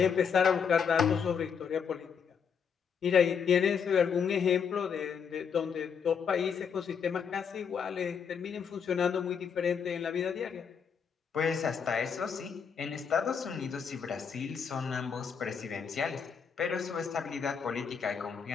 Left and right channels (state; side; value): quieter; right; 6.8 dB